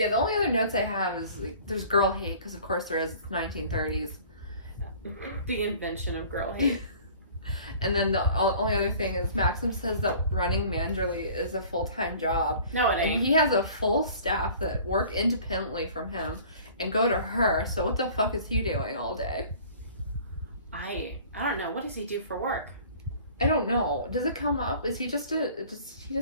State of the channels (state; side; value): inverted; both; correlation -0.48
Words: the only other notes I have is, like, there's girl hate, because of course there is. It's 1930s. The invention of girl hate. And then the only other thing is Maxim says that running Manderley is a full-time job. No, it ain't. And he has a full staff that work independently from him and go to her, so what the fuck is he doing all day? I don't know. What does he do for work? I don't know. Does it come up? Does he just